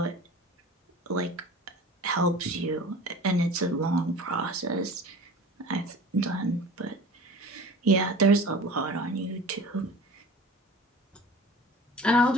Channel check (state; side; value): normal; both; correlation 0.40